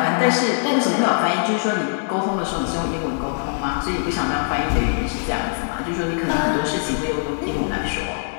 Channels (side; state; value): right; silent; 60 dB below the other